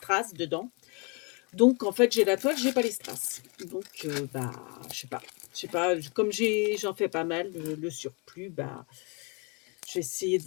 dedans. Donc en fait j'ai la toile, j'ai pas les strass. Donc je sais pas, comme j'en fais pas mal, le surplus, j'ai essayé de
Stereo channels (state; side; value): quieter; right; 32.5 dB